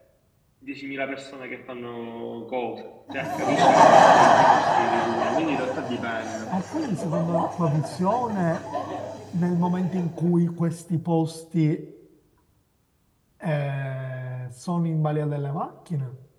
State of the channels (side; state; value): both; identical; correlation 1.00